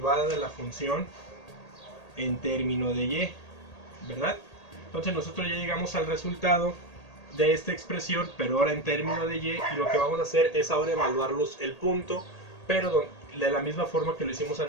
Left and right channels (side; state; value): right; late; 1.8 ms